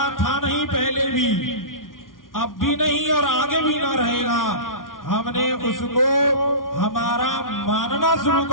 था नहीं पहले भी, अब भी नहीं और आगे भी ना रहेगा, हमने उसको हमारा मानना शुरू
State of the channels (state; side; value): late; right; 0.89 ms